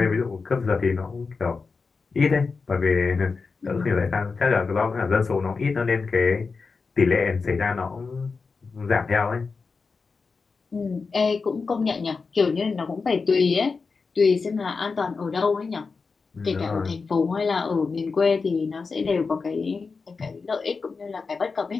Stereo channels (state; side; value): quieter; right; 4.6 dB